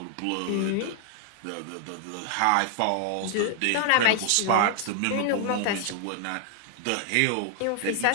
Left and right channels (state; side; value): different; both; correlation 0.00